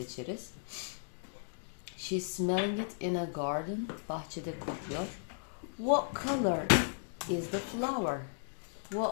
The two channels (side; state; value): right; silent; digital silence